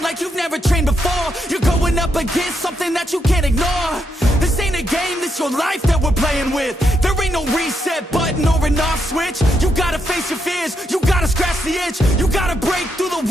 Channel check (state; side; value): normal; both; correlation 0.80